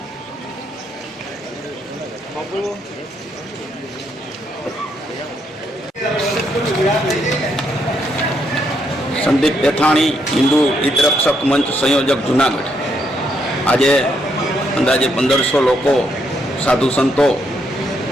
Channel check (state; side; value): normal; both; correlation 0.76